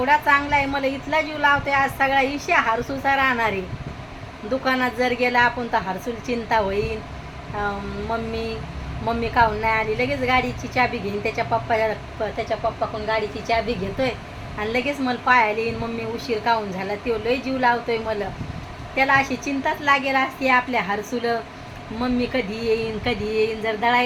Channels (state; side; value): identical; both; correlation 1.00